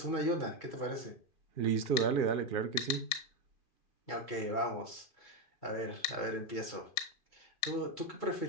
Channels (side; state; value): right; late; 2.4 ms